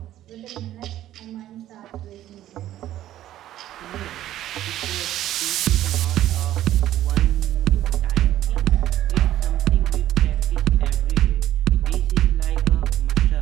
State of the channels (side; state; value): left; quieter; 13.1 dB